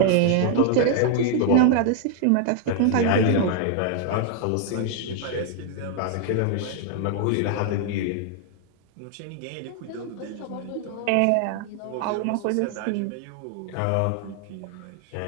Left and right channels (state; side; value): different; both; correlation 0.00